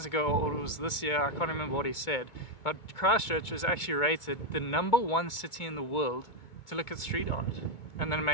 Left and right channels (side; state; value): right; late; 2.2 ms